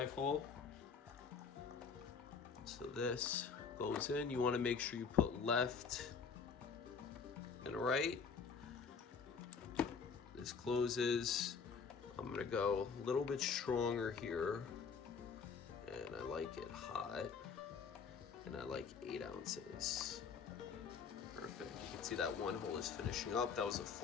So this goes in. You want to make sure you put left and right. This closes. I'm gonna go a little bit stronger here, and I like it hot, and I like 8 ounces. Perfect. You can see that 1 hole is finishing up. That was a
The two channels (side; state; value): right; quieter; 5.8 dB